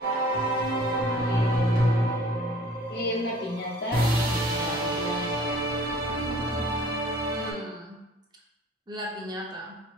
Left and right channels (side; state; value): both; normal; correlation 0.50